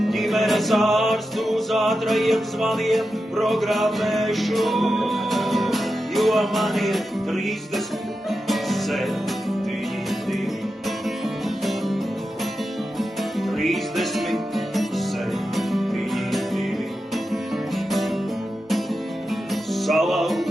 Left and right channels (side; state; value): both; normal; correlation 0.90